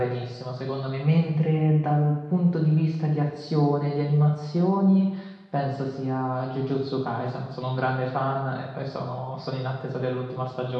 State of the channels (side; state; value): both; identical; correlation 1.00